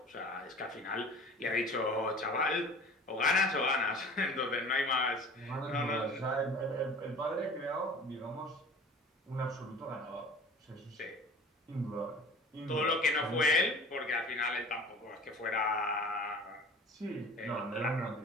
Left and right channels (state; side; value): normal; both; correlation 0.42